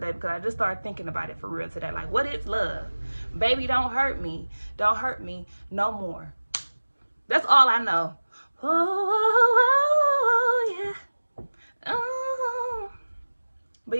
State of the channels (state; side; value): inverted; both; correlation -1.00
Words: because I just started thinking about it for real today. Like, what is love? Baby, don't hurt me. Don't hurt me no more. That's all I know. Oh, yeah. Oh. But